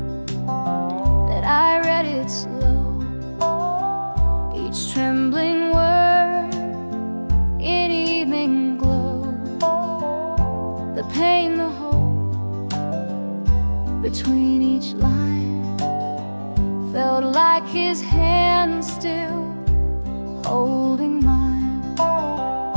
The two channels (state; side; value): inverted; both; correlation -1.00